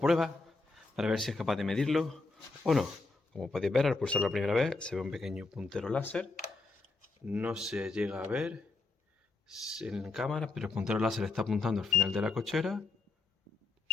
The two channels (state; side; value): quieter; right; 3.6 dB